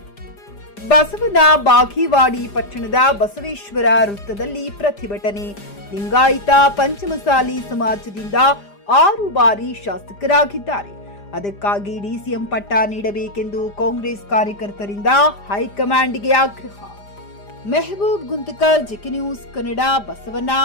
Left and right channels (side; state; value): right; late; 5.0 ms